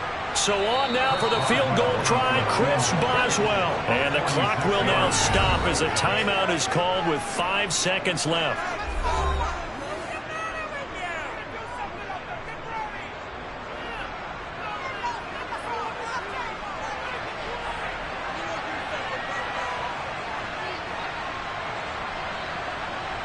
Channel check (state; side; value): identical; both; correlation 1.00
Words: So on now for the field goal try, Chris Boswell. And the clock will now stop as a timeout is called with 5 seconds left.